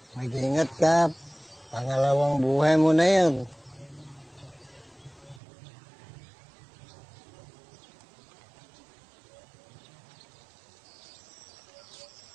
Ingat ka. Pangalawang buhay mo na yan.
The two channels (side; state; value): left; drops out; at 5.4 s